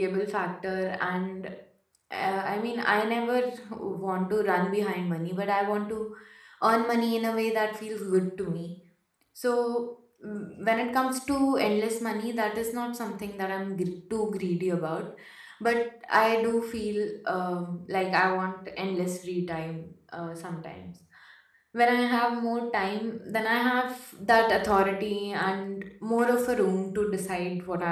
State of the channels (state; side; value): identical; both; correlation 1.00